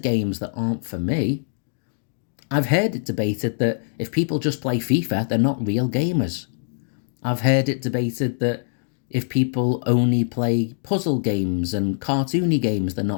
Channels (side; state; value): right; silent; 63 dB below the other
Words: games that aren't for me. I've heard it debated that if people just play FIFA, they're not real gamers. I've heard it debated that if people only play puzzle games and cartoony games, they're